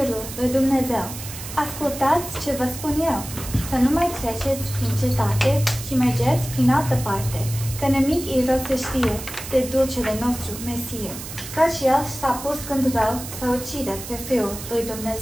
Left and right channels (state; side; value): noise; right; hiss, 11 dB below the sound